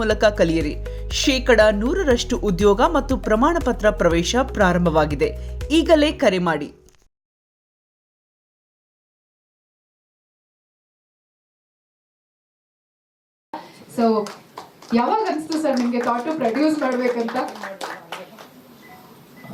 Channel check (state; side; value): identical; both; correlation 1.00